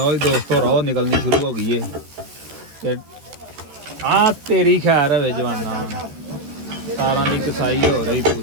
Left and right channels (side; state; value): left; late; 13 ms